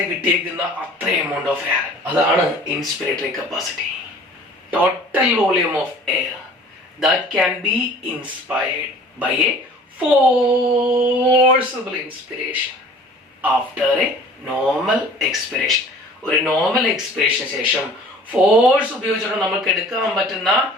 കിട്ടിയേക്കുന്ന അത്ര എമൗണ്ട് ഓഫ് എയർ, അതാണ് inspiratory capacity. Total volume of air that can be inspired by a forcible inspiration after a normal expiration. ഒരു നോർമൽ എക്സ്പിറേഷന് ശേഷം ഫോഴ്സ് ഉപയോഗിച്ചിട്ട് നമുക്ക് എടുക്കാൻ പറ്റുന്ന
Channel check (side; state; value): both; normal; correlation 0.48